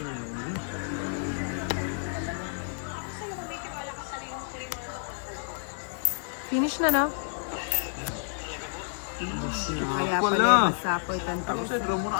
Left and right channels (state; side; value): silent; right; 58 dB below the other